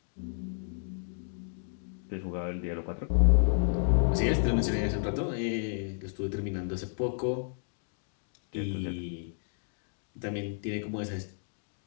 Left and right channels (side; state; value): right; silent; digital silence